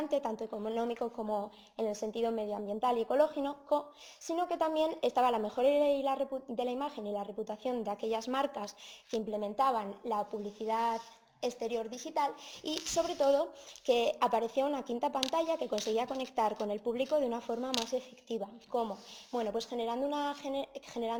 tanto económico como en el sentido medioambiental y ecológico, sino que también estaba la mejora de la imagen y la reputación de aquellas marcas que implementaban la publicidad exterior digital, y sobre todo que aparecía una quinta pantalla que conseguía conectar con el público de una forma más efectiva. ¿Cómo? Bueno, pues generando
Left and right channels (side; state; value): both; identical; correlation 1.00